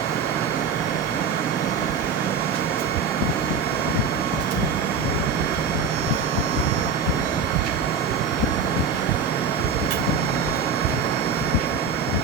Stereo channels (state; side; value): quieter; left; 5.3 dB